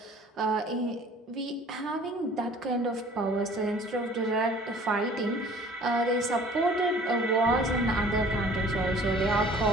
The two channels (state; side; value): normal; both; correlation 0.50